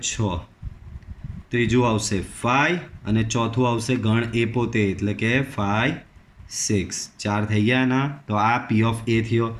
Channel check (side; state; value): both; identical; correlation 1.00